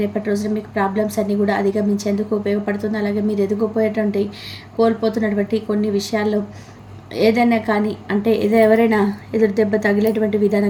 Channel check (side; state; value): both; identical; correlation 1.00